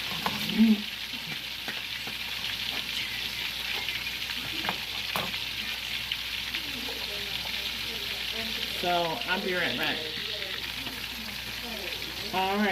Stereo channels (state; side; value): identical; both; correlation 1.00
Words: so I'll be right back. All